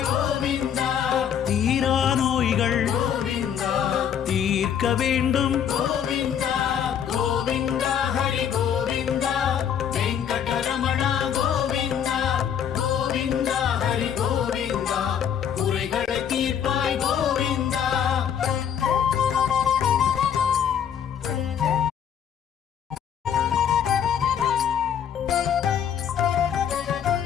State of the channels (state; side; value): quieter; right; 8.7 dB